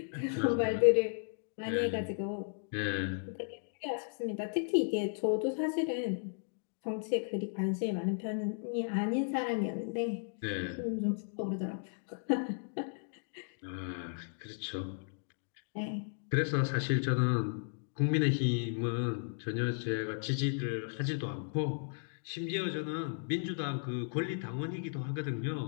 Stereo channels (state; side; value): silent; right; digital silence